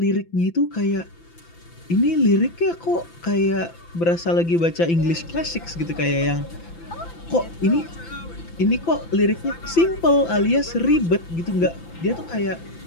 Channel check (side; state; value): right; late; 5.9 ms